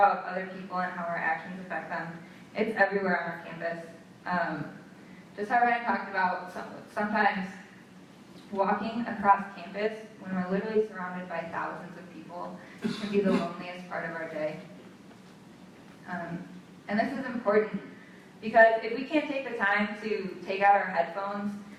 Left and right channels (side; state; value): both; identical; correlation 1.00